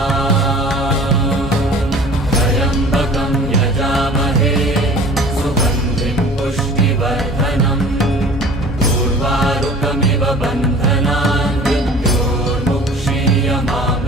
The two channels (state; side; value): normal; both; correlation 0.46